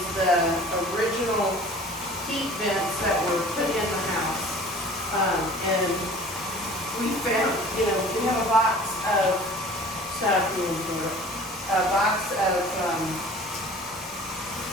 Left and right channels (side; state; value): both; normal; correlation 0.45